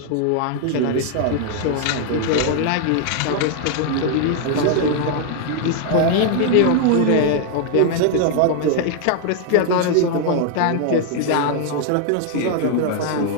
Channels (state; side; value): different; both; correlation 0.00